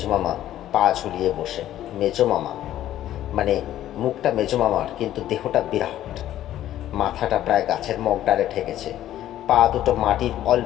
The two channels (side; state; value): right; quieter; 12.7 dB